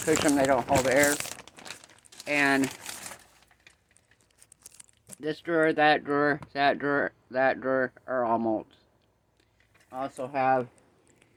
them, they don't hold air. And this drawer, that drawer, that drawer, that drawer are all molds. I also have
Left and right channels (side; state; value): both; identical; correlation 1.00